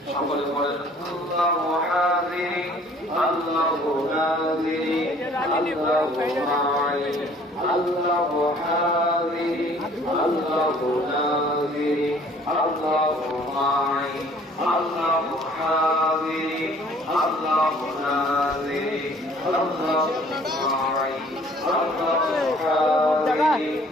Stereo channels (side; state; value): both; normal; correlation 0.55